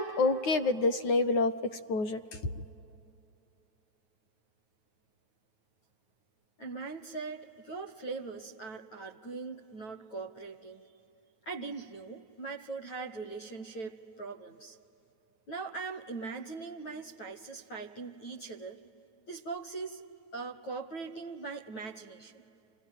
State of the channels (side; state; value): right; late; 9.1 ms